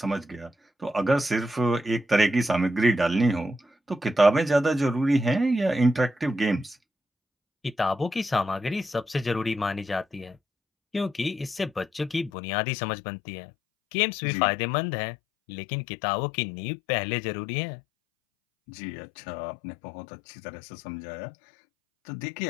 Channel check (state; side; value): drops out; right; at 12.3 s